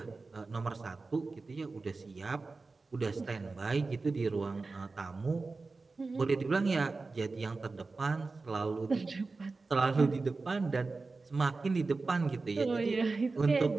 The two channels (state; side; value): quieter; left; 3.8 dB